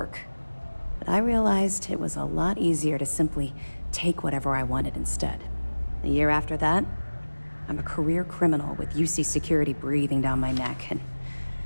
But I realized it was a lot easier to simply take whatever I wanted instead. A year after that, I'm a career criminal with UC security breathing down my neck, and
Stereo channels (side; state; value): both; inverted; correlation -1.00